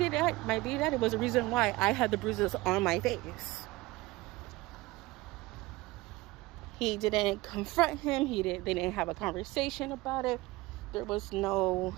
daddy was the reason why I had the bruises on my face. He didn't confront him. They didn't have a conversation about it. There was no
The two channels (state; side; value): quieter; left; 20.5 dB